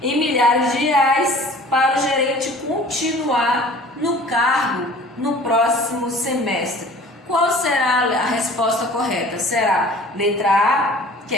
Em milhares de reais para o gerente continuar no cargo no próximo semestre. Qual será a resposta correta? Será letra A, que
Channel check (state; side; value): normal; both; correlation 0.47